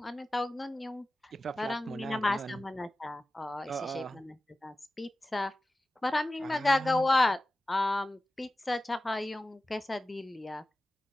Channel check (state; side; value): normal; both; correlation 0.95